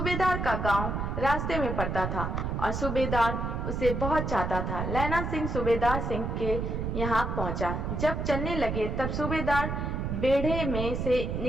का गांव रास्ते में पड़ता था और सूबेदार उसे बहुत चाहता था। लैना सिंह सूबेदार सिंह के यहाँ पहुंचा। जब चलने लगे तब सूबेदार बेढ़े में से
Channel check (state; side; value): noise; right; rumble, 2 dB below the sound